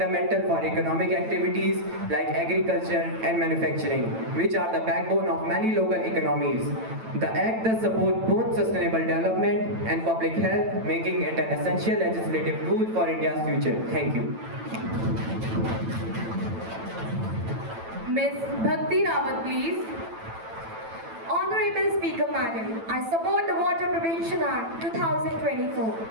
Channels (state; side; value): late; left; 9.0 ms